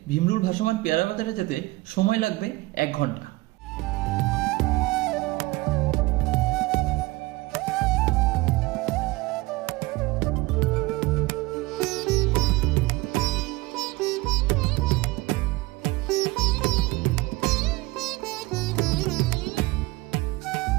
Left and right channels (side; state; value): left; quieter; 21.5 dB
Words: ভীমরুল ভাসমান পেয়ারা বাজারে যেতে সময় লাগবে 1 ঘন্টা।